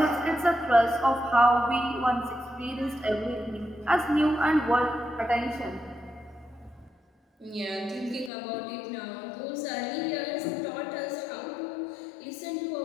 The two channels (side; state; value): right; drops out; at 8.3 s